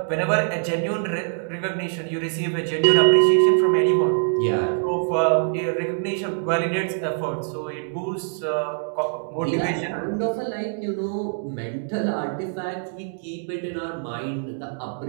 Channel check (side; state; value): left; silent; digital silence